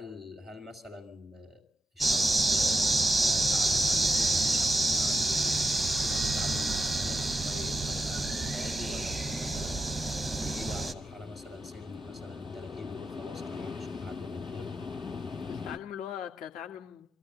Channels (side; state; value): both; normal; correlation 0.87